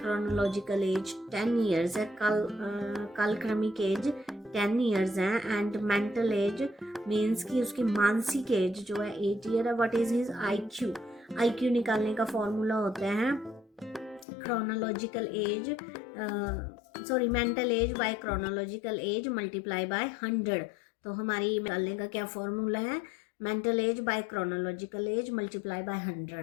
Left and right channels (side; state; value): right; drops out; at 14.2 s